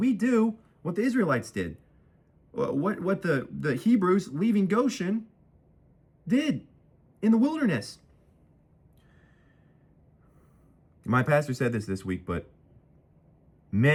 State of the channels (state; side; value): identical; both; correlation 1.00